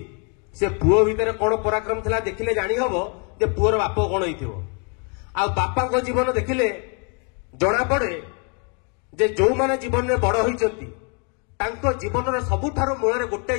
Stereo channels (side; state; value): right; quieter; 37.3 dB